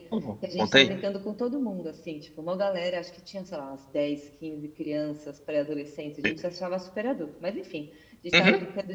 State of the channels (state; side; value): identical; both; correlation 1.00